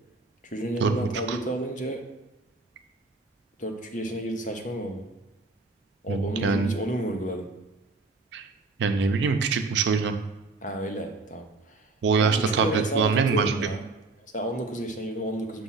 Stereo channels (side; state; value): left; quieter; 3.5 dB